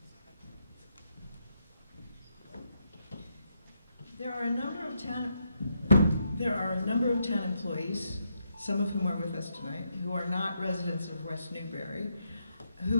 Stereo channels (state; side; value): inverted; both; correlation -0.79